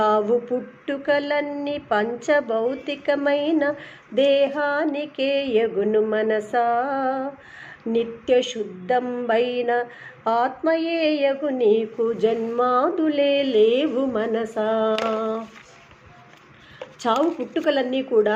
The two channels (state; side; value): identical; both; correlation 1.00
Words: పుట్టుకలన్నీ పంచభౌతికమైన దేహానికే యగును మనసా, నిత్య శుద్ధంబైన ఆత్మయే యగు నీకు జన్మాదులే లేవు మనసా. చావు పుట్టుకలన్నీ కూడా